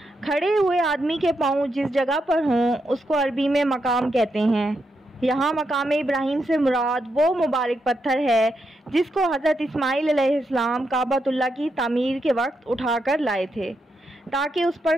खड़े हुए आदमी के पाँव जिस जगह पर हों उसको अरबी में मकाम कहते हैं। यहाँ मकाम इब्राहीम से मुराद वो मुबारक पत्थर है जिसको हज़रत इस्माईल अलैहिस्सलाम काबतुल्लाह की तामीर के वक्त उठाकर लाए थे ताकि उस पर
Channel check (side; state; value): both; normal; correlation 0.82